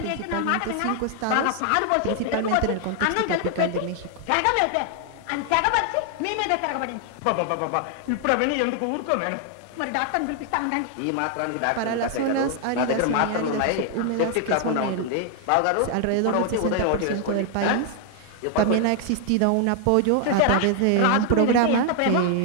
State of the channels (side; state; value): both; different; correlation 0.00